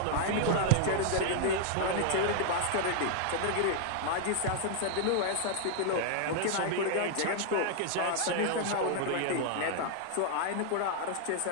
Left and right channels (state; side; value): different; both; correlation 0.00